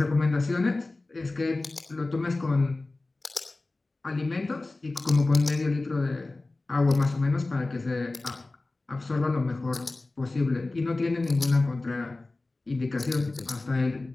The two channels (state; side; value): quieter; right; 3.1 dB